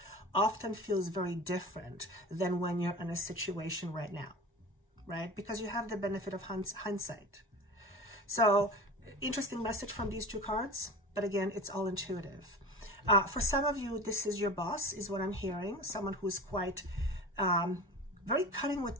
often feels very different than when you're in a situation right now, right? Because you have the benefit of hindsight. So, interesting message from these two cards, but again, it's all intuitive. For some of you, this is your boss, is what I'm hearing. Someone who's quite very cutting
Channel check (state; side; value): normal; both; correlation 0.34